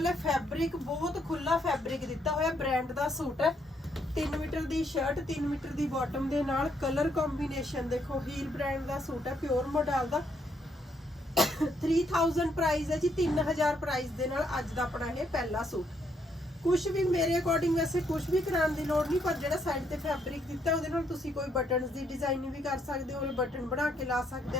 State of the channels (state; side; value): normal; both; correlation 0.73